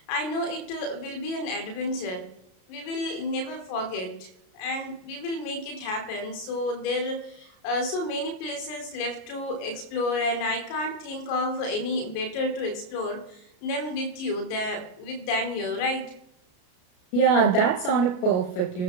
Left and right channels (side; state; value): right; late; 33 ms